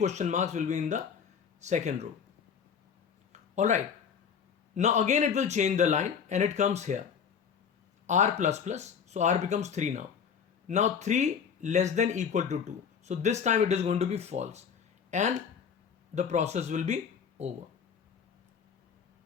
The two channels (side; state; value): right; quieter; 7.0 dB